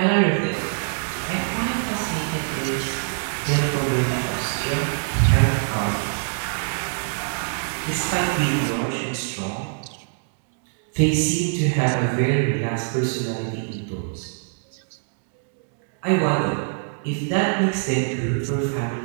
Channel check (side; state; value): left; silent; digital silence